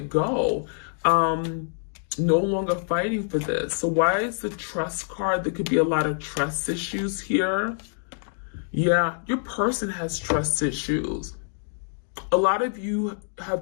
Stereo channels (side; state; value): right; silent; digital silence